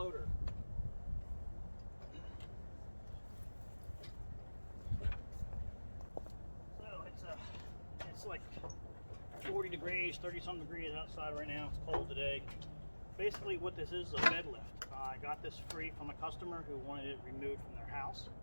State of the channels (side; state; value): both; inverted; correlation -1.00